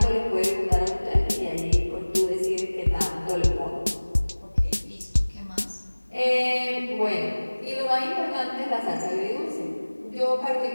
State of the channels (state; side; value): inverted; both; correlation -1.00